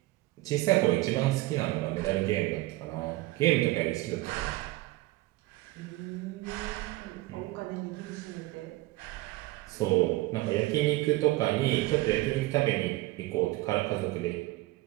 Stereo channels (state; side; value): quieter; left; 19.1 dB